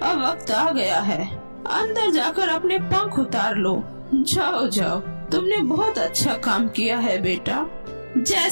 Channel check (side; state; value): both; inverted; correlation -1.00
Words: अब वक्त आ गया है। अंदर जाकर अपने पंख उतार लो। जाओ जाओ, तुमने बहुत अच्छा काम किया है बेटा।